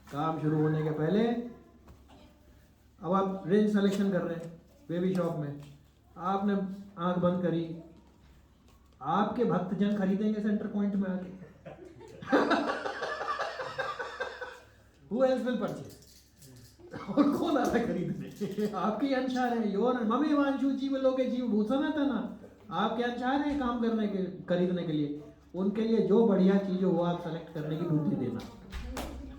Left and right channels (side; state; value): both; identical; correlation 1.00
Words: काम शुरू होने के पहले। अब आप रेंज सिलेक्शन कर रहे हैं बेबी शॉप में, आपने आंख बंद करी, आपके भक्तजन खरीदेंगे सेंटर पॉइंट में आके। Who else will purchase? और कौन आता है खरीदने? आपके अंशार है, योर ममे वांशु जीव लोके जीव भूषण था ना, आपके अंशार है काम करने के, खरीदने के लिए। उनके लिए जो बढ़िया चीज हो वो आप सेलेक्ट करने की बुद्धि देना।